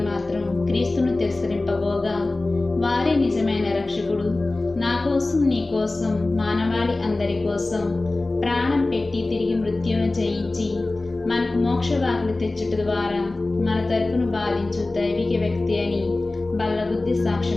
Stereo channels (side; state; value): right; quieter; 3.0 dB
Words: మాత్రం క్రీస్తును తిరస్కరింపబోగా, వారే నిజమైన రక్షకుడు, నా కోసం నీ కోసం మానవాళి అందరి కోసం ప్రాణం పెట్టి తిరిగి మృత్యువును జయించి మనకు మోక్షవాకులు తెచ్చుట ద్వారా మన తరపును బాధించు దైవిక వ్యక్తి అని బల్లగుద్ది